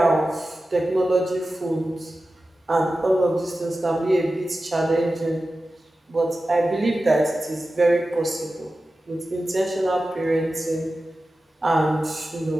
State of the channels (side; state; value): both; normal; correlation 0.94